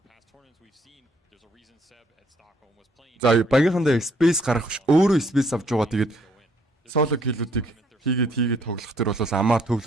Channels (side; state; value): both; normal; correlation 0.66